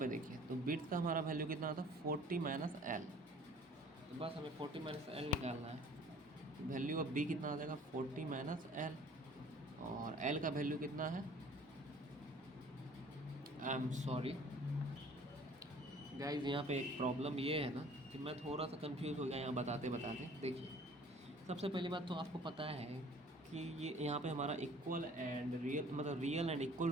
देखिए, तो विड्थ का हमारा वैल्यू कितना आता है 40 माइनस एल, तो बस हमें 40 माइनस एल निकालना है। वैल्यू ऑफ बी कितना आ जाएगा 40 माइनस एल, और एल का वैल्यू कितना है, आई एम सॉरी गाइज, यहाँ पे एक प्रॉब्लम ये है ना कि मैं थोड़ा सा कंफ्यूज हो गया यहाँ बताते बताते। देखिए सबसे पहली बात तो आपको पता है कि ये यहाँ पे हमारा इक्वल एंड रियल, मतलब रियल एंड इक्वल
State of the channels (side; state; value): both; normal; correlation 0.51